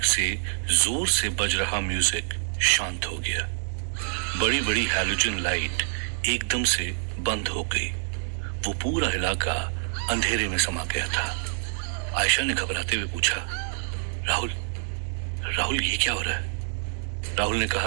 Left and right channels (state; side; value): silent; left; digital silence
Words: से जोर से बज रहा म्यूजिक शांत हो गया। बड़ी बड़ी हैलोजन लाइट एकदम से बंद हो गई। वो पूरा इलाका अंधेरे में समा गया था। आयशा ने घबराते हुए पूछा, राहुल राहुल ये क्या हो रहा है? राहुल ने